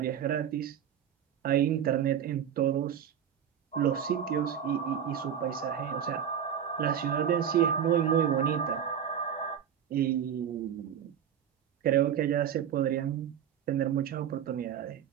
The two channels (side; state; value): left; quieter; 9.0 dB